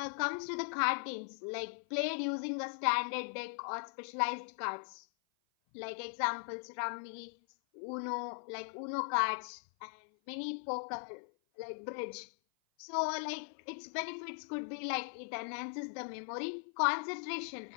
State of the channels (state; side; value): silent; right; 52 dB below the other